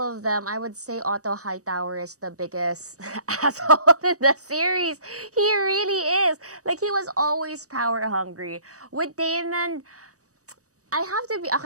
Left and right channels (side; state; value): left; late; 0.66 ms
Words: of them, I would say Otto Hightower is the biggest asshole in the series. He really is. Like, he was always power hungry. With Daemon, I have to be...